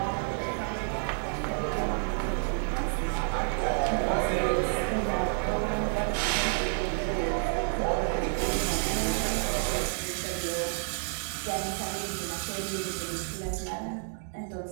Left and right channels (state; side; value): silent; left; 58 dB below the other